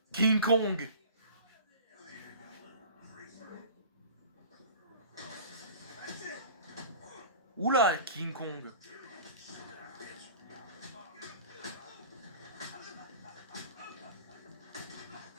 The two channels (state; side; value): inverted; both; correlation -0.41